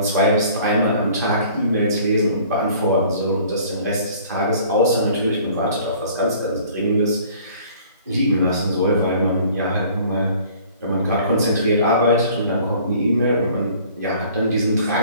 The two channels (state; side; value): inverted; both; correlation -0.52